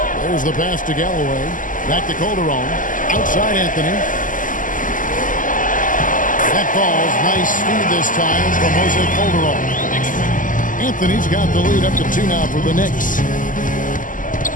There's the pass to Galloway. Back to Calderon. Outside Anthony. That ball's nice speed this time from Jose Calderon. Anthony's got the lead up to 2 now for the Knicks.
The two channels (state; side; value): late; right; 0.38 ms